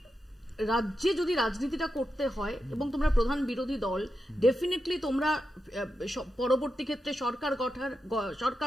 রাজ্যে যদি রাজনীতিটা করতে হয় এবং তোমরা প্রধান বিরোধী দল, ডেফিনেটলি তোমরা পরবর্তী ক্ষেত্রে সরকার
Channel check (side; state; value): both; normal; correlation 0.88